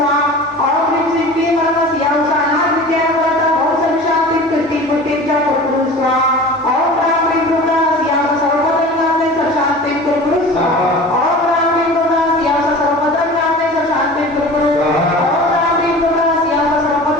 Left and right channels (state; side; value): normal; both; correlation 0.38